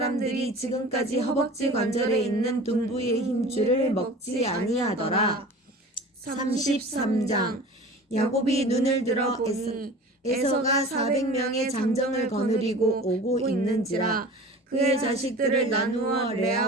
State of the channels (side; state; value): both; normal; correlation 0.39